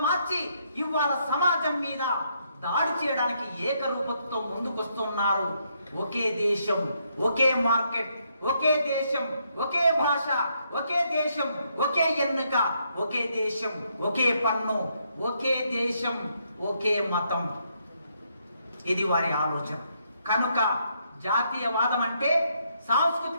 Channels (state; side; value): inverted; both; correlation -0.75